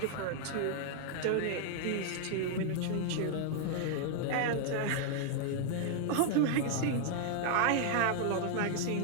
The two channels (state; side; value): different; both; correlation 0.00